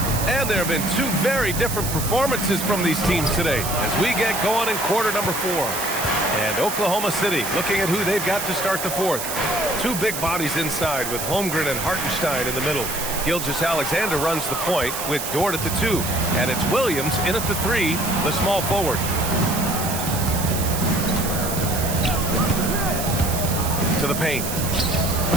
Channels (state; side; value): noise; right; hiss, 5 dB below the sound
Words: And there have been 2 very different performances from these teams today as we get going in quarter number 4. And Oklahoma City looking at who they've got to start the fourth. 2 big bodies inside with Holmgren and Hartenstein in the middle. Gilgeous-Alexander runs the point with Dort at the 2. And it's Williams in at the 3, the small forward. To the paint.